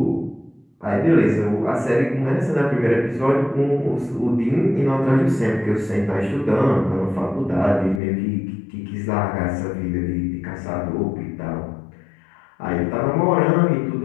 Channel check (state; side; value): drops out; right; at 8.0 s